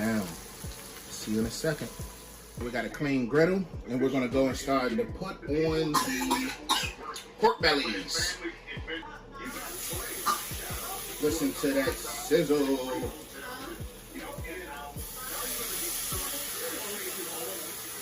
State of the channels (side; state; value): both; identical; correlation 1.00